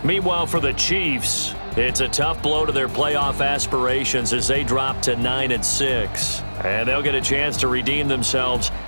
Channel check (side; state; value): both; inverted; correlation -1.00